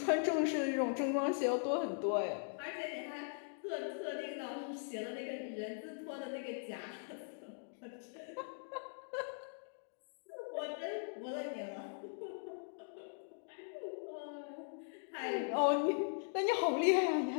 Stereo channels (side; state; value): right; silent; digital silence